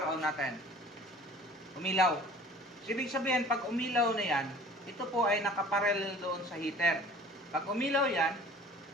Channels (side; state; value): both; normal; correlation 0.47